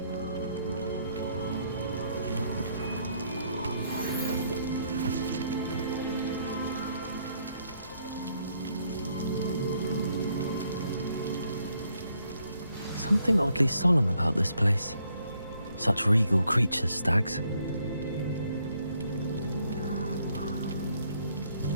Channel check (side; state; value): both; inverted; correlation -0.71